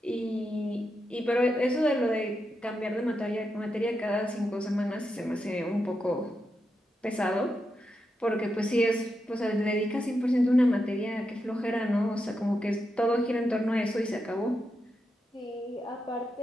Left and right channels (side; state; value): both; normal; correlation 0.86